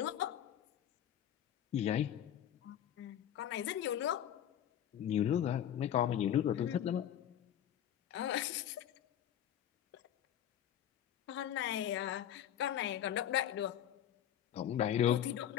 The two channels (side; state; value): right; quieter; 10.5 dB